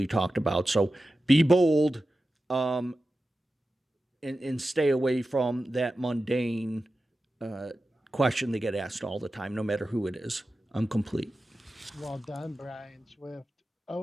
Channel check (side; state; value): both; normal; correlation 0.93